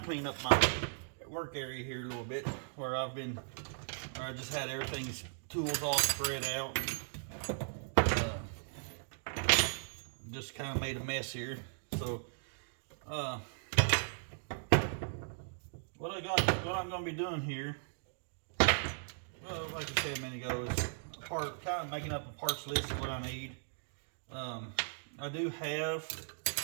clean up my work area here a little bit where I just had everything's tools all spread out. Just kind of made a mess here. So what I'm going to be doing here, well, like I said a minute ago, is kind of making up a parts list of what I need. I do have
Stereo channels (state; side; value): silent; left; digital silence